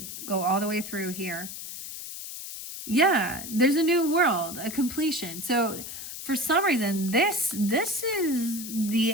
go all the way through here. Yeah, there's a new world, a completion. So for some reason, this is the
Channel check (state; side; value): noise; left; hiss, 9 dB below the sound